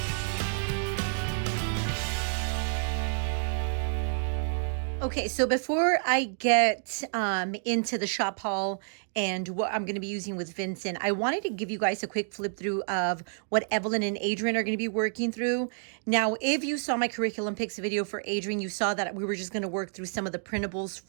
Okay, so before I get into the shop haul and what I'm going to be using with Vincent, I wanted to give you guys a quick flip through of what Evelyn and Adrian are going to be working through. Now, if you saw my curriculum picks video for Adrian, you saw that we were just going to work through some of the printables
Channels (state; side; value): silent; left; digital silence